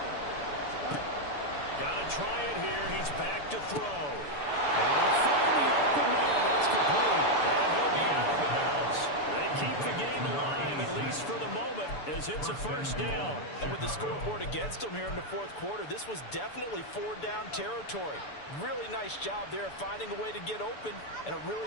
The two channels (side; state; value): right; late; 6.9 ms